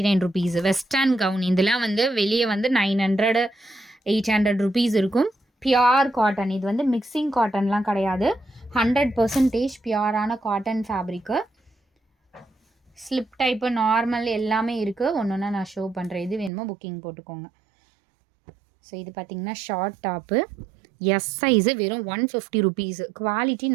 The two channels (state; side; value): drops out; left; at 16.5 s